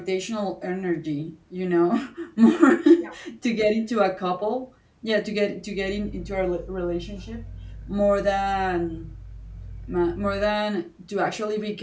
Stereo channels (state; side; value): identical; both; correlation 1.00